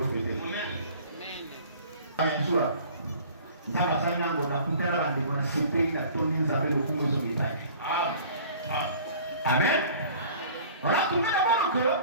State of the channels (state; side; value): inverted; both; correlation -0.47